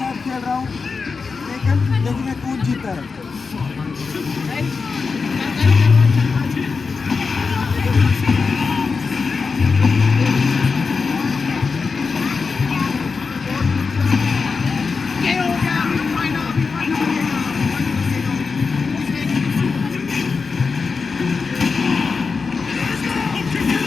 खेल रहा हूँ, लेकिन देखिए कौन जीता है।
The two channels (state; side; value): quieter; right; 4.8 dB